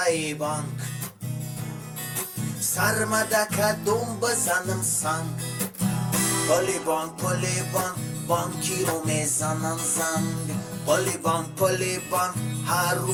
بانک سرمدک دوم بزنم سنگ پلی بانک بانکی رو میزنم زنگ پلی بانک هر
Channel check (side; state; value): both; identical; correlation 1.00